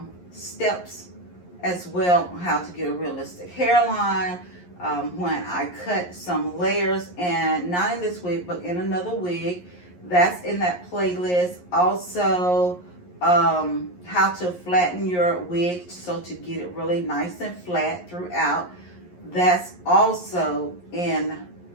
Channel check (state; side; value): late; right; 11 ms